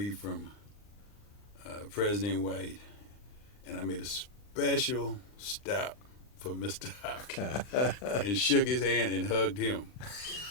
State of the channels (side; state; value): right; late; 39 ms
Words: from President White, and I made a special stop for Mr. Hopkins and shook his hand and hugged him.